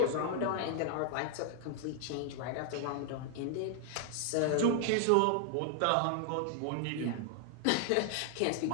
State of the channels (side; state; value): both; different; correlation 0.00